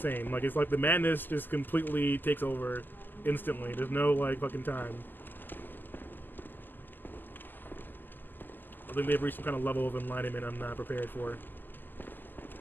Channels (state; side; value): late; right; 0.089 ms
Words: Like, it's like the madness just completely takes over instantly. There's no, like, fucking time. I think they've reached some kind of level of enlightenment I'm not prepared for.